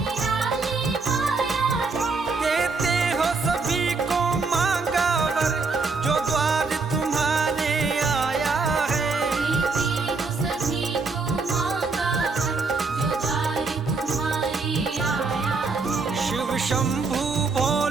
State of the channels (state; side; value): quieter; left; 4.2 dB